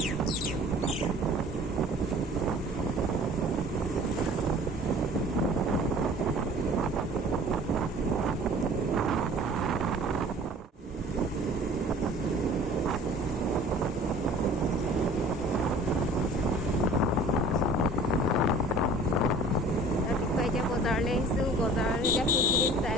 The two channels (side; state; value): both; normal; correlation 0.47